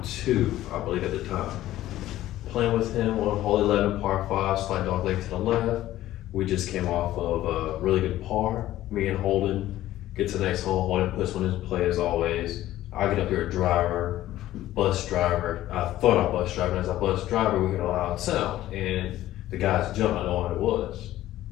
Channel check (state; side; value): quieter; right; 14.4 dB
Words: 2, I believe at the time. Playing with him on hole 11, par 5, slight dog leg to the left. We just came off of a really good par. Me and Holden get to the next hole. Holden puts one in play as always. I get up here a driver, bus driver. I thought I bus driver, and as I bus driver, we get a loud sound. And the guys jump, I know what it was.